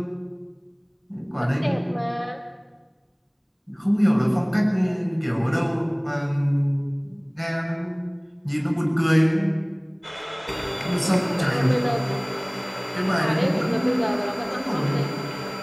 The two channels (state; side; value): identical; both; correlation 1.00